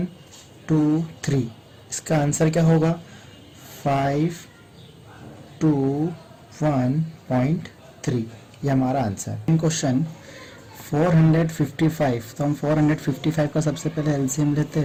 इसका आंसर क्या होगा 521.3, ये हमारा आंसर। क्वेश्चन 455, तो हम 455 का सबसे पहले एलसीएम लेते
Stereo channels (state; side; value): identical; both; correlation 1.00